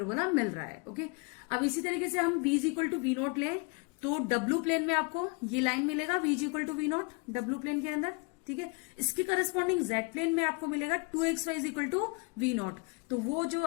मिल रहा है, ओके। अब इसी तरीके से हम v is equal to v naught ले, तो W प्लेन में आपको ये लाइन मिलेगा v is equal to v naught W plane के अंदर, ठीक है। इसके करस्पॉन्डिंग Z प्लेन में आपको मिलेगा 2xy is equal to v naught. तो वो जो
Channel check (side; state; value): right; quieter; 31.4 dB